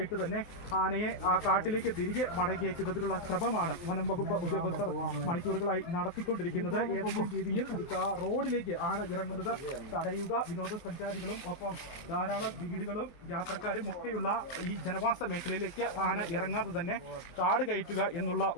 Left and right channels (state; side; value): late; right; 23 ms